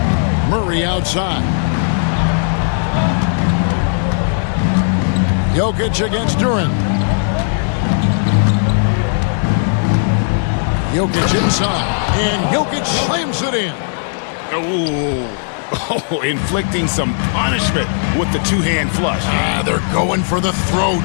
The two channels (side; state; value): right; silent; digital silence